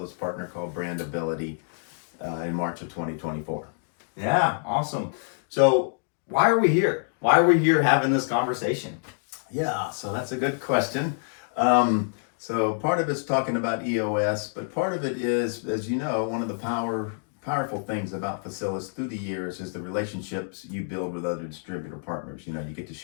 partner called Brandability in March of 2024. Yeah, awesome. So why are we here? Why are we here having this conversation? Yeah, so that's a good question. So part of it's talking about EOS, but part of it is, as you know, one of the powerful things about Facilis through the years is the relationships you build with other distributor partners. You know, you get to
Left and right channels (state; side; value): silent; right; 60 dB below the other